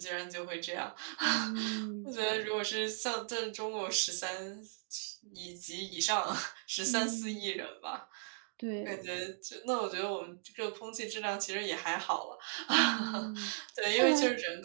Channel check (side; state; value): left; silent; digital silence